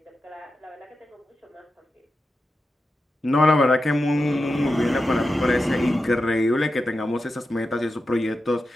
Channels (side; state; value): both; normal; correlation 0.90